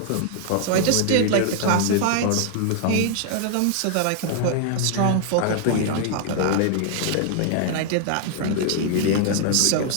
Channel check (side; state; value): both; different; correlation 0.00